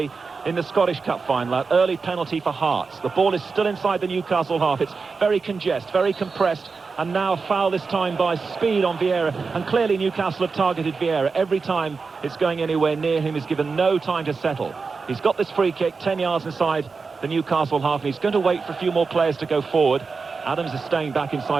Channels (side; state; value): left; quieter; 4.7 dB